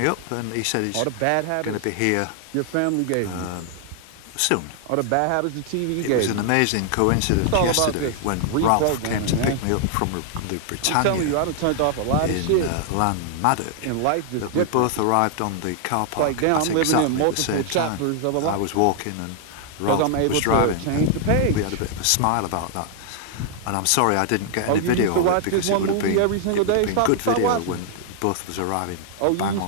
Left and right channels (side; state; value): both; different; correlation 0.00